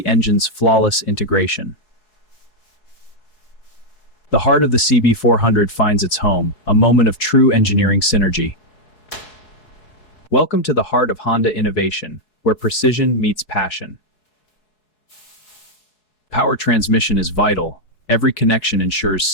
engine's flawless integration. The heart of the CB400 finds its home, a moment of true engineering synergy. Welcome to the heart of Honda innovation, where precision meets passion. Power transmission is vital. Every connection ensures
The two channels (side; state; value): right; late; 4.7 ms